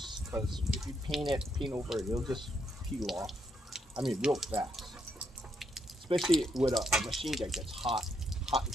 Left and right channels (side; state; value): both; normal; correlation 0.77